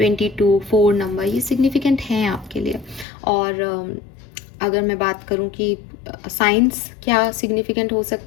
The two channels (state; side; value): drops out; right; at 3.1 s